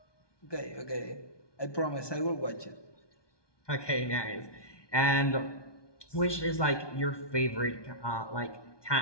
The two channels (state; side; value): late; right; 1.2 ms